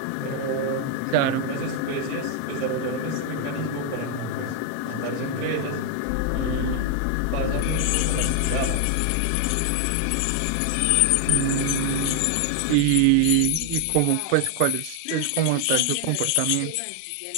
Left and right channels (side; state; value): both; different; correlation 0.00